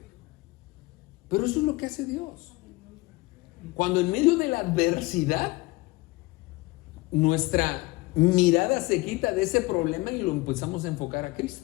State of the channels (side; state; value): right; quieter; 22.0 dB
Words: Pero eso es lo que hace Dios. Cuando en medio de la adversidad nuestra mirada se quita de ese problema y lo empezamos a enfocar a